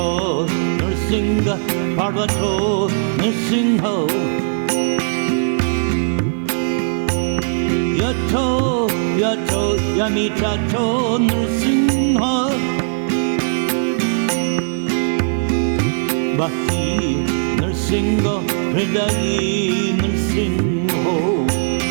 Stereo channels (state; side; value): silent; left; 67 dB below the other